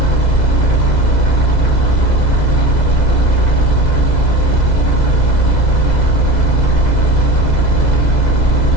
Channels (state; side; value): late; right; 2.0 ms